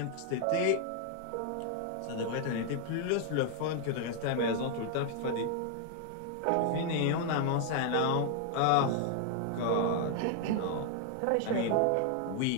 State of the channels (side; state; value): both; different; correlation 0.00